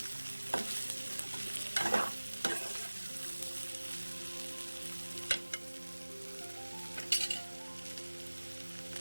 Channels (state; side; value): inverted; both; correlation -1.00